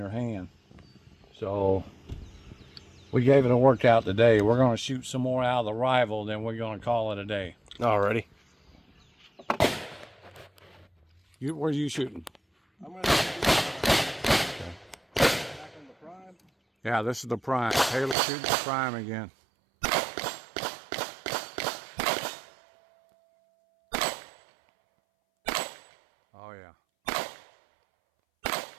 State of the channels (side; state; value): left; drops out; at 18.2 s